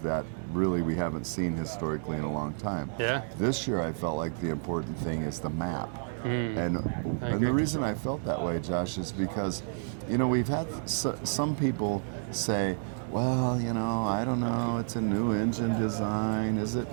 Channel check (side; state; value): left; silent; digital silence